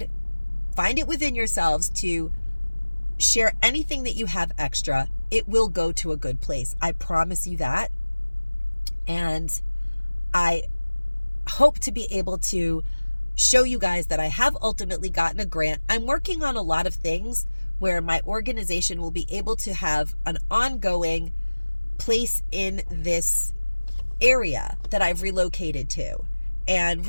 find it within yourselves to share anything that you have extra, it will go to a good place. I promise you that. And I hope to be able to show you guys that I have ultimately gotten a grant. I'm working on a lot of things where my organization will be able to have an ongoing place in this area that I've relocated to and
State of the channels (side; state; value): both; inverted; correlation -1.00